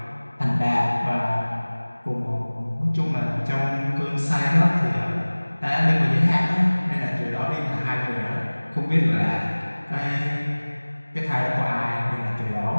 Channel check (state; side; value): inverted; both; correlation -1.00